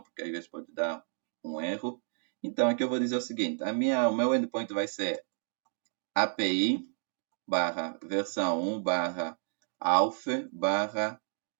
porque às vezes pode dar um erro. Então aqui eu vou dizer o seguinte, o meu endpoint vai ser API versão 1 auth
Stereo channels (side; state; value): left; silent; digital silence